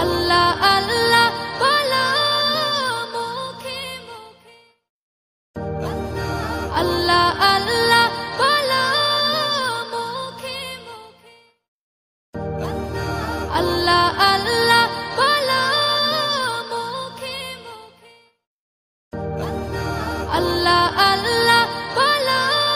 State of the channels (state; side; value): identical; both; correlation 1.00